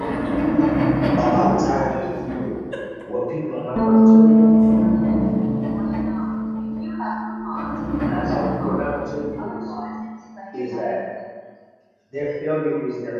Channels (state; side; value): identical; both; correlation 1.00